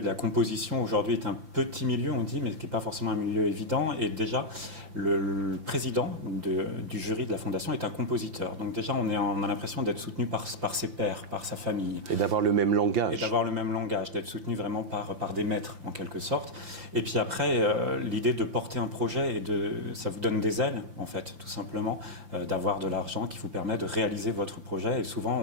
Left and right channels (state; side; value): late; left; 5.8 ms